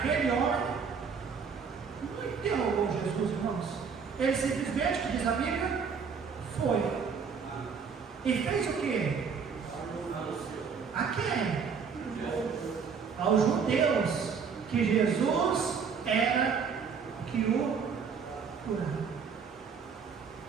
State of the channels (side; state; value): left; quieter; 6.0 dB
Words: homem não interrogou Jesus, irmãos. Ele simplesmente, que diz a Bíblia, foi. E fez o quê? A quem? Aos judeus, que Jesus era que o curava.